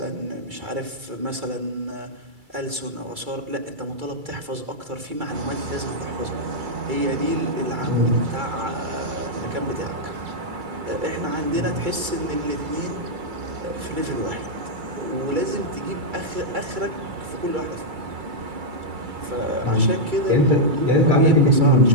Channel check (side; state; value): left; late; 2.3 ms